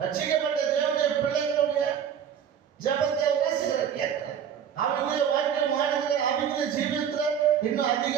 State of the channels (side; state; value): left; quieter; 8.4 dB